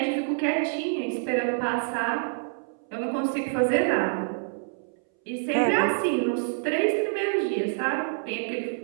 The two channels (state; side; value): silent; left; 60 dB below the other